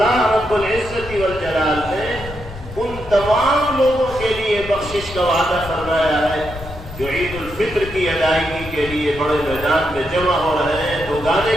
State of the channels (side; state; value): left; noise; rumble, 13 dB below the sound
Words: رب العزت والجلال نے ان تمام لوگوں کے لیے بخشش کا وعدہ فرمایا ہے جو عید الفطر کی ادائیگی کے لیے بڑے میدان میں جمع ہو رہے ہیں، دو گانے